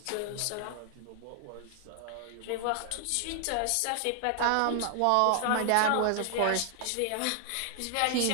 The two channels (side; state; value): both; different; correlation 0.00